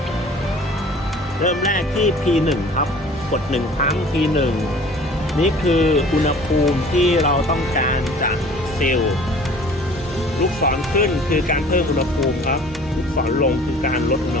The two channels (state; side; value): normal; both; correlation 0.48